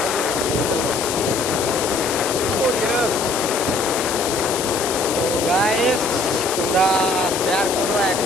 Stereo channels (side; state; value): left; noise; hiss, 4 dB below the sound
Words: তো গাইস তোমরা শেয়ার করো, এক